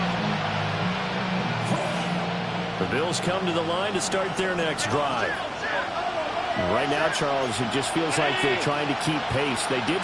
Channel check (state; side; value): identical; both; correlation 1.00